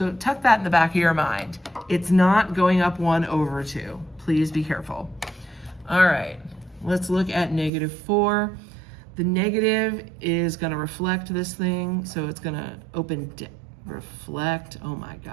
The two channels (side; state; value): left; drops out; at 7.7 s